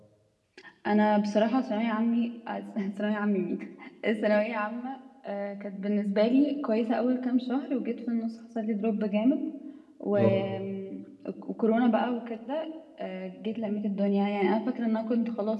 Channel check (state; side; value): identical; both; correlation 1.00